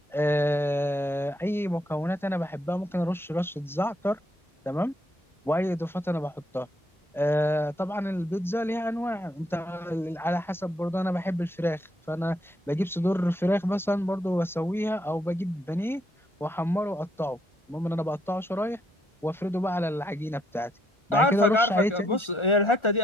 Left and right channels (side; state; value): both; normal; correlation 0.73